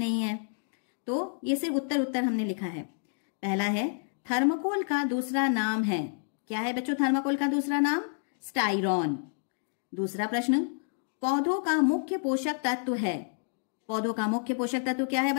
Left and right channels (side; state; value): right; silent; digital silence